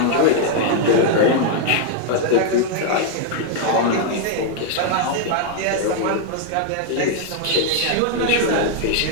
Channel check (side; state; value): both; different; correlation 0.00